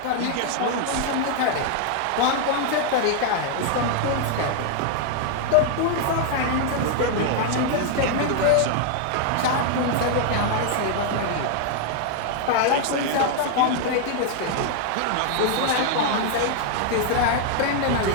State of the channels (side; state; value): both; different; correlation 0.00